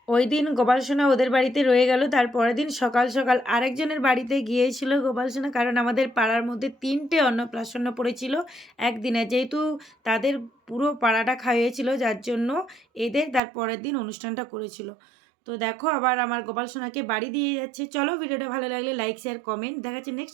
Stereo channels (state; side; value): drops out; left; at 13.4 s